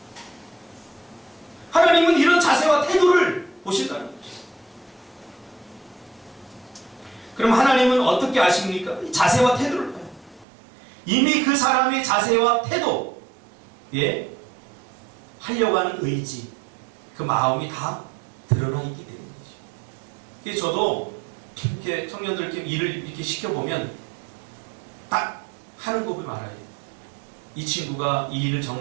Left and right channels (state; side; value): drops out; left; at 10.5 s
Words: 하나님은 이런 자세와 태도를 보신다는 거죠. 그럼 하나님은 어떻게 아십니까? 자세와 태도를 봐요. 이미 그 사람의 자세와 태도, 하려고 하는 의지, 그 마음이 다 드러나 있기 때문이죠. 그래서 저도 이렇게 청년들께 일을 이렇게 시켜보면 딱 하는 거 보면 알아요. 이 친구가 이 일을